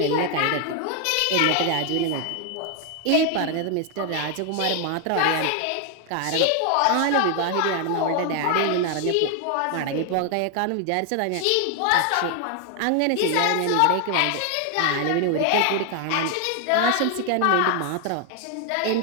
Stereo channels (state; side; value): different; both; correlation 0.00